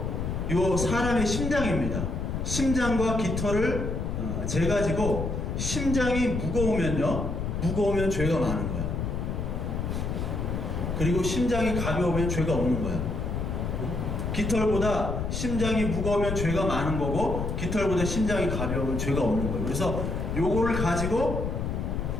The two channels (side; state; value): left; noise; rumble, 2 dB below the sound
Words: 요 사람의 심장입니다. 심장과 깃털을 재가지고 심장이 무거우면 죄가 많은 거야. 그리고 심장이 가벼우면 죄가 없는 거야. 깃털보다 심장이 무거우면 죄가 많은 거고 깃털보다 심장이 가벼우면 죄가 없는 거예요. 그래서 요거를 가지고